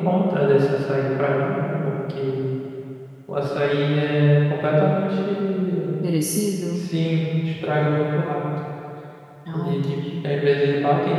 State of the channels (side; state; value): both; identical; correlation 1.00